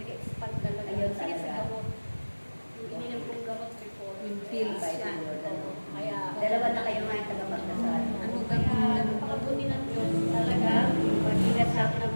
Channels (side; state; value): both; inverted; correlation -1.00